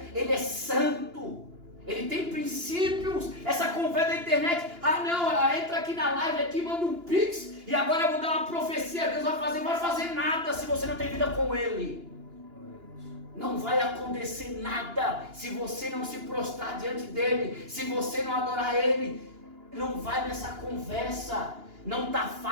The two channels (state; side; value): late; left; 2.9 ms